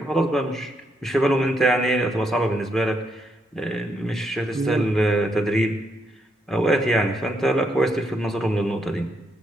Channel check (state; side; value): normal; both; correlation 0.77